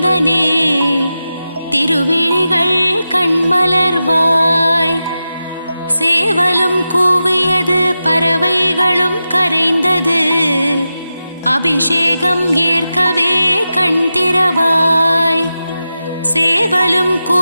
திருவிழிகள் கண்மலர்வாய். சேவலும் கூவியது பறவைகளும் கரைந்தது அபிஷேகம் ஏற்கவே கண் திறவாய். சேவலும்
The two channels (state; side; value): inverted; both; correlation -0.91